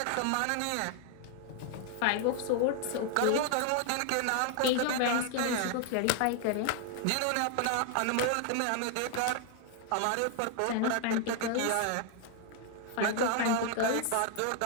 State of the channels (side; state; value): both; different; correlation 0.00